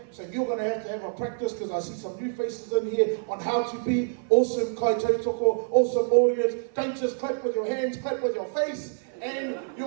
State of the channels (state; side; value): silent; left; 55 dB below the other